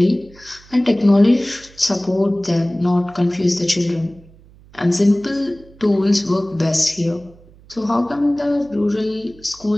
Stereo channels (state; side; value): noise; right; hum, 25 dB below the sound